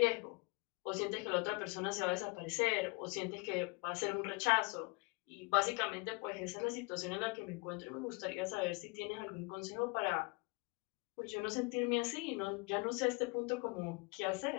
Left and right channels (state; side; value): quieter; right; 29.8 dB